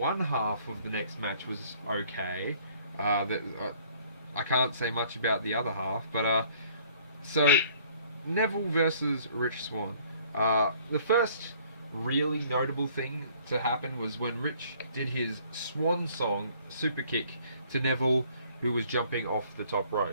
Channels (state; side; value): inverted; both; correlation -0.58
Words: half of the next match was okay, I can't say much about the other half. But so Neville versus Rich Swann. The first really notable thing to happen was when Rich did his swan song super kick to Neville, who was jumping off the top